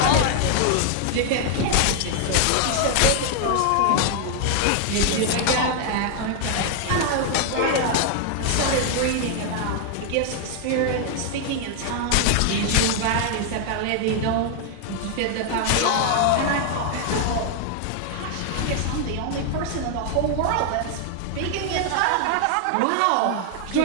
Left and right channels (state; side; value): different; both; correlation 0.00